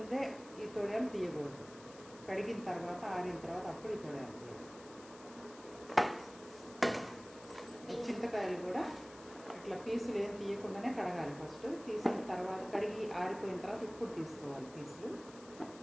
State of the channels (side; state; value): left; noise; hiss, 19 dB below the sound